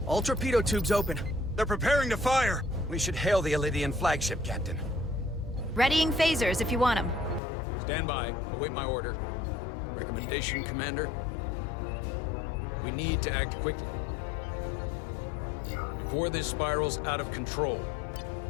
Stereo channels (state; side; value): drops out; right; at 7.4 s